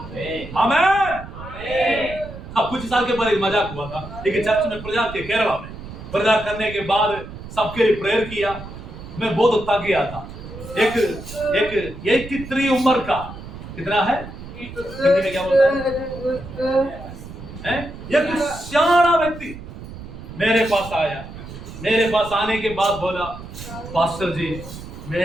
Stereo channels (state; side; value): noise; right; rumble, 13 dB below the sound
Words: आमीन। अब कुछ साल के बाद एक मजाक हुआ था, लेकिन चर्च में प्रचार के केरला में प्रचार करने के बाद सबके लिए प्रेयर किया। मैं बहुत थक गया था। एक 83 उम्र का, कितना है हिंदी में क्या बोलते हैं, एक सियाना व्यक्ति मेरे पास आया। मेरे पास आने के बाद बोला, पास्टर जी